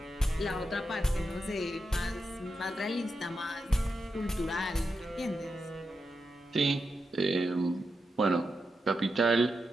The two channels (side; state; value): both; normal; correlation 0.87